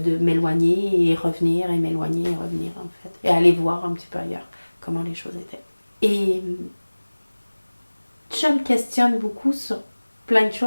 m'éloigner et revenir, et m'éloigner et revenir, en fait. Et aller voir un petit peu ailleurs comment les choses étaient. Et je me questionne beaucoup sur plein de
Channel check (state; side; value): inverted; both; correlation -1.00